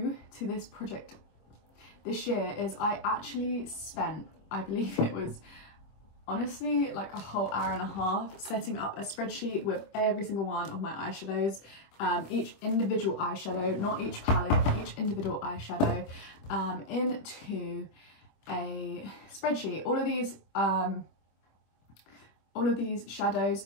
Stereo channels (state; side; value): late; right; 25 ms